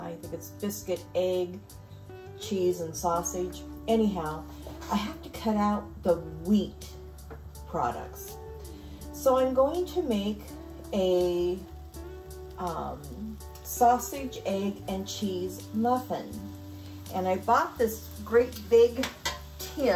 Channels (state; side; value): identical; both; correlation 1.00